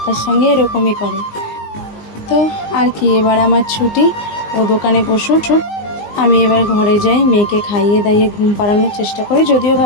সঙ্গে এরকমই করে। তো আর কি, এবার আমার ছুটি, ও দোকানে বসুক, আমি এবার ঘরে যাই, মেয়েকে খাইয়ে দাইয়ে ঘুম পাড়ানোর চেষ্টা করি, যদিও বা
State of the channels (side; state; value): right; late; 19 ms